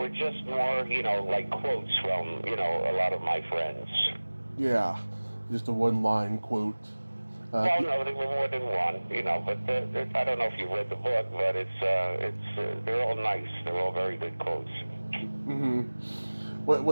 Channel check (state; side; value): inverted; both; correlation -1.00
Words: just more, like quotes from, a lot of my friends. Yeah, just a one-line quote. Well, no, there were more than one, but I don't know if you read the book, but they're all nice. They're all very good quotes. Mm-hmm. What